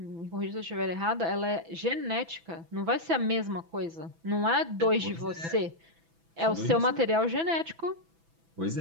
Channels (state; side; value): late; left; 6.0 ms